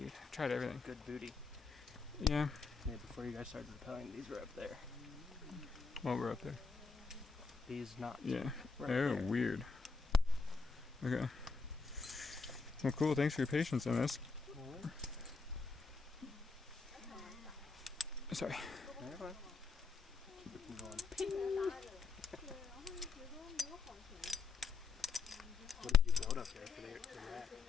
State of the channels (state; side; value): quieter; right; 4.7 dB